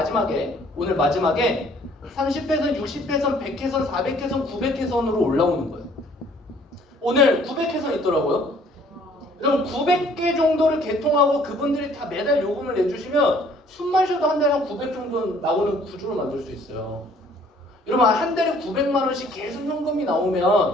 오늘 마지막에 30회선, 60회선, 100회선, 400회선, 900회선으로 올라오는 거예요. 오늘 900회선 있더라고요. 그럼 900개 정도를 개통하고 그분들이 다 매달 요금을 내주시면 숨만 쉬어도 한 달에 한 900 정도 나오는 구조를 만들 수 있어요. 여러분 한 달에 900만 원씩 계속 현금이 나오면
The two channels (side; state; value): both; normal; correlation 0.58